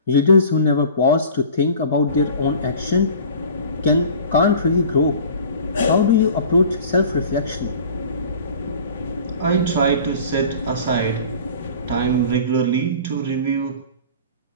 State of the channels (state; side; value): inverted; both; correlation -0.43